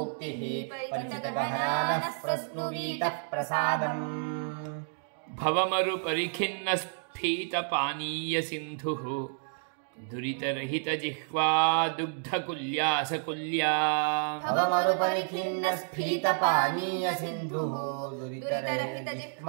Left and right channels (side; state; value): left; silent; digital silence